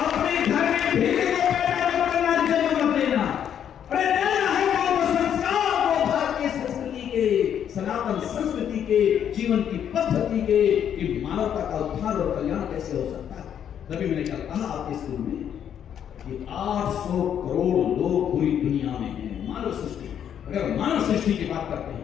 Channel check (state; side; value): quieter; right; 9.1 dB